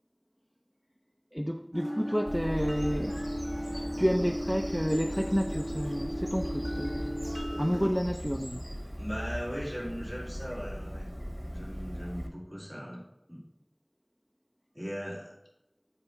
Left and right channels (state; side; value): identical; both; correlation 1.00